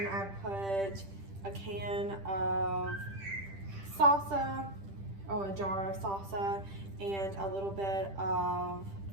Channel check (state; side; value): late; left; 10 ms